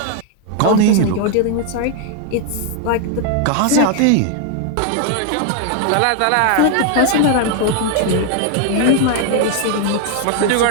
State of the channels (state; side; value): different; both; correlation 0.00